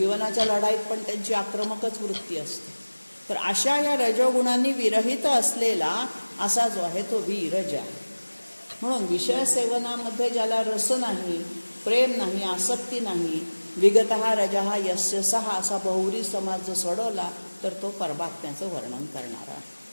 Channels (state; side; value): inverted; both; correlation -1.00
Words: लढाईत पण त्यांची आक्रमकच वृत्ती असते. तर अशा या रजोगुणांनी विरहित असलेला असा जो आहे तो विरज आहे. म्हणून विषय सेवनामध्ये ज्याला रस नाही, प्रेम नाही, आसक्ती नाही, विगतहा रजहा यस्य सहा असा बहुरी समाज जर सोडवला तर तो परमात्म्याचं वर्णन करणारा आहे.